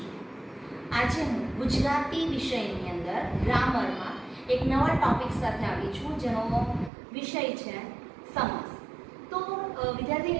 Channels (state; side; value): drops out; left; at 6.9 s